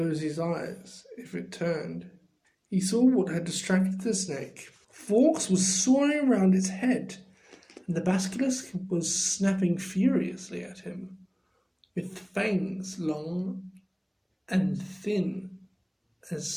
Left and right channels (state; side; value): identical; both; correlation 1.00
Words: his eyes if it turned, he saw what had distracted the snake. Fawkes was soaring around its head, and the basilisk was snapping furiously at him, with fangs long and thin as